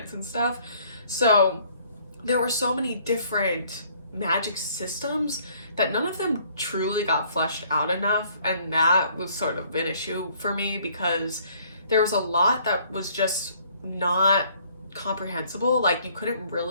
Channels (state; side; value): inverted; both; correlation -0.60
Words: and stuff. So there were so many different magic systems that none of them truly got fleshed out enough, and that was sort of an issue for me because there was a lot that was just not comprehensible. Like you couldn't